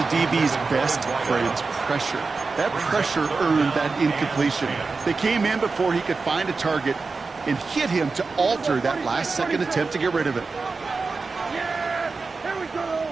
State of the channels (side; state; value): left; quieter; 4.2 dB